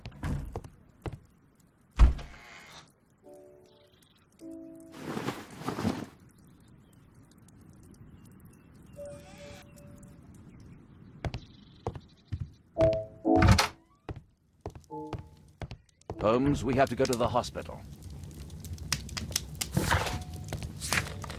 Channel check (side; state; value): both; identical; correlation 1.00